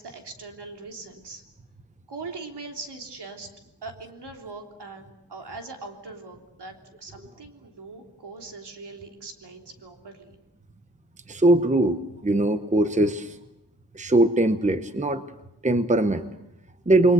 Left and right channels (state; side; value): normal; both; correlation 0.61